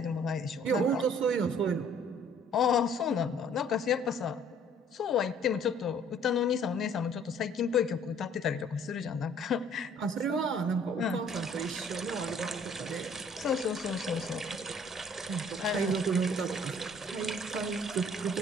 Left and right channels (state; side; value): normal; both; correlation 0.57